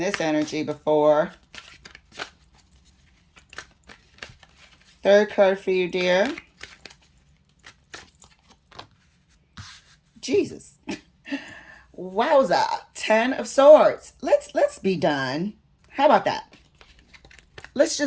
energy before. Third card for you, dear. Jesus. Wowza. 10 of Swords. Let's be done. How about that? Let's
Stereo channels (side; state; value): both; identical; correlation 1.00